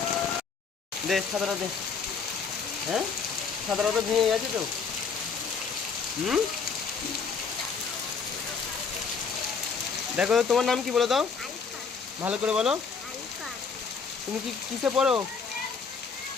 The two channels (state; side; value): quieter; right; 5.5 dB